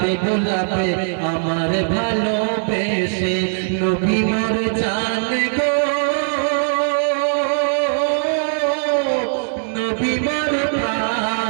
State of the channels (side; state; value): left; silent; 66 dB below the other